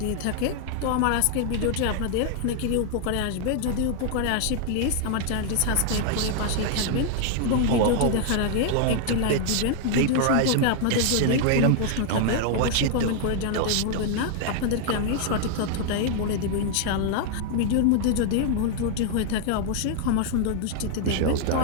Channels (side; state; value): both; different; correlation 0.00